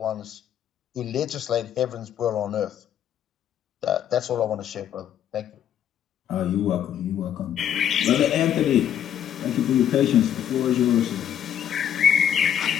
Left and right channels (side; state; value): right; quieter; 9.9 dB